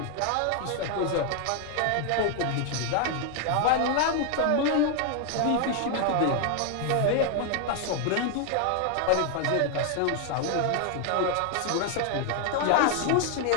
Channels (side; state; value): both; different; correlation 0.00